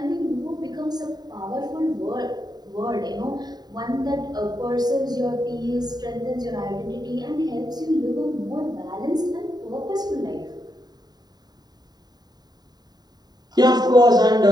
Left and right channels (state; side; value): late; left; 0.20 ms